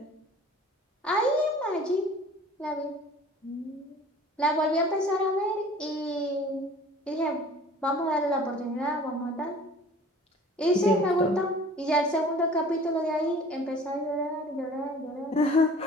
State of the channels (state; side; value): normal; both; correlation 0.47